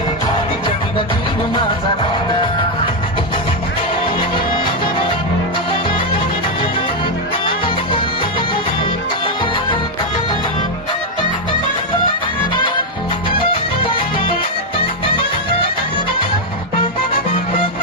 तिच्या विना जीव माझा राहिना.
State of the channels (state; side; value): normal; both; correlation 0.02